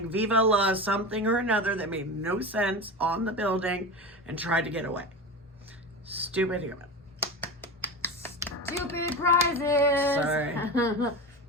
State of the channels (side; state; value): both; normal; correlation 0.25